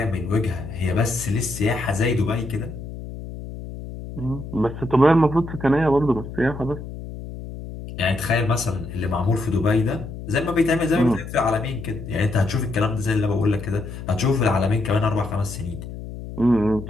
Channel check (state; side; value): noise; left; hum, 10 dB below the sound